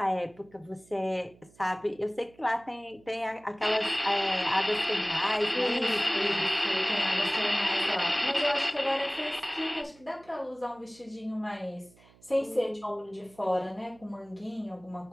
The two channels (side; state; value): right; noise; hum, 27 dB below the sound